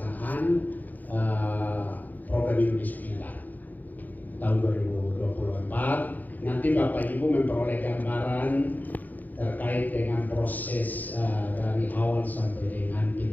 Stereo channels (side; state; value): right; late; 0.083 ms